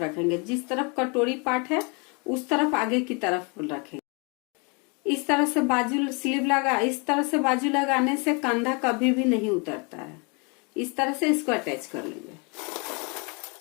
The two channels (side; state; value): right; quieter; 32.6 dB